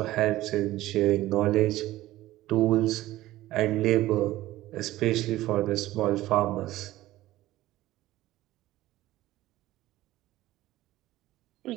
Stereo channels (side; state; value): left; quieter; 16.0 dB